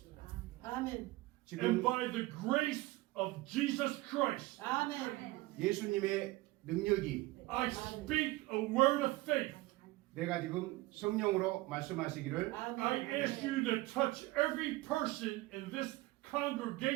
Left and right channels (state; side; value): quieter; left; 19.6 dB